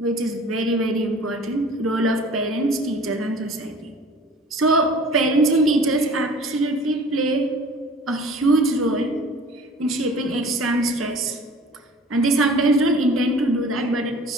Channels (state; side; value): normal; both; correlation 0.46